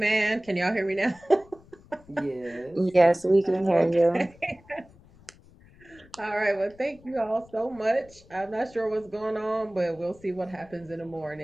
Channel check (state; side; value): noise; left; rumble, 25 dB below the sound